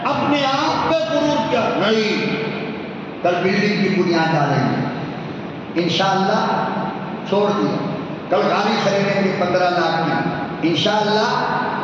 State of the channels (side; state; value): both; identical; correlation 1.00